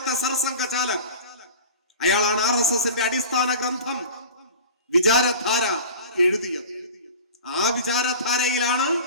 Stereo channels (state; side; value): inverted; both; correlation -0.37